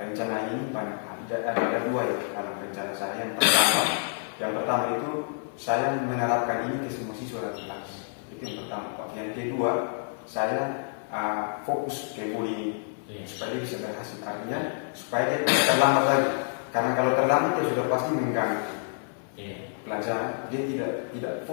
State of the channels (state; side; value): silent; right; 58 dB below the other